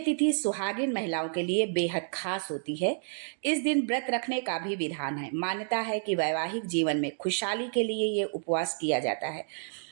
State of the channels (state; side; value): silent; left; digital silence